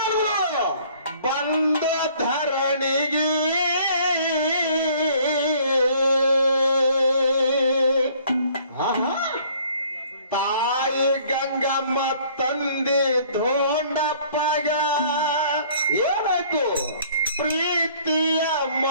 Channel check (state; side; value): inverted; both; correlation -0.57